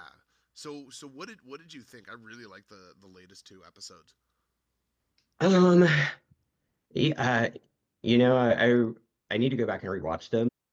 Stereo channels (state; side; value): identical; both; correlation 1.00